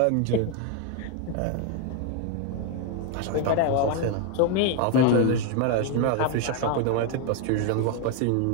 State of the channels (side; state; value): both; different; correlation 0.01